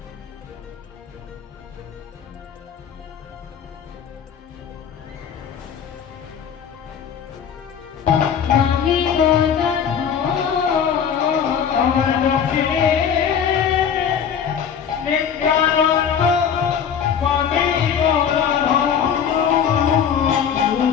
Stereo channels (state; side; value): quieter; right; 7.8 dB